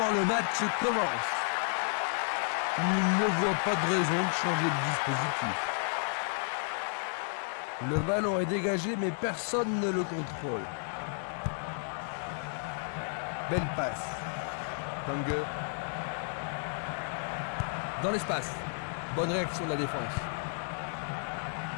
le match commence. Il ne voit pas de raison de changer de dispositif. Le ballon est dégagé, mais personne ne le contrôle. Belle passe. Tange. Dans l'espace. Bonne réaction de la défense.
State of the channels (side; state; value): right; silent; 56 dB below the other